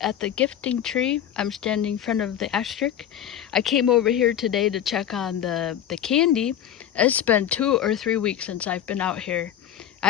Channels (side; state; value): right; quieter; 10.4 dB